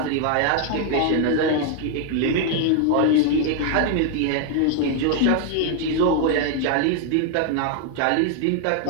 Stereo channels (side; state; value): both; different; correlation 0.00